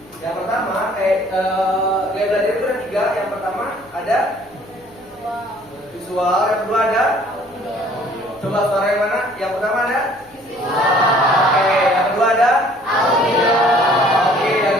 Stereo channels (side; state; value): right; noise; hum, 30 dB below the sound